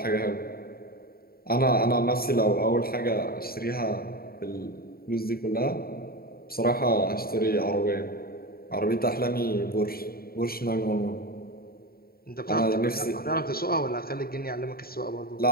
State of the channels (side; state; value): right; late; 0.44 ms